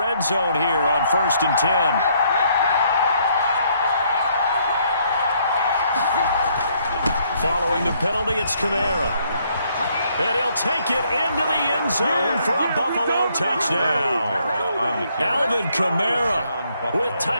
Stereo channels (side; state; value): both; inverted; correlation -0.69